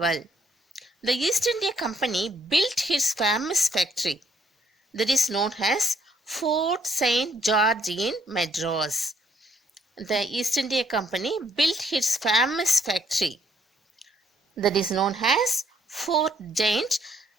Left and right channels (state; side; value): normal; both; correlation 0.69